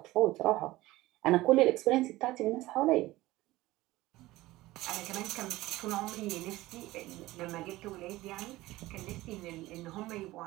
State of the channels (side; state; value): left; quieter; 18.1 dB